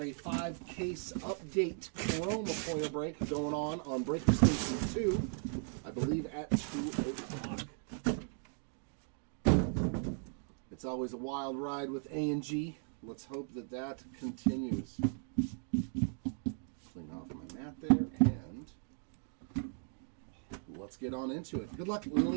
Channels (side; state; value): left; silent; 53 dB below the other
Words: a 5-case update Chroma foil break going on Breaker Station 2, I believe at 2 o'clock. It's always a wild ride with A&G. Let's hope that that continues. Clean off my mat there, and let's get on into it. Good luck,